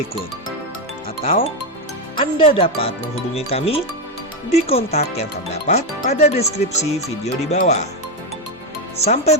Atau Anda dapat menghubungi kami di kontak yang terdapat pada deskripsi video di bawah.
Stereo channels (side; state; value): both; normal; correlation 0.07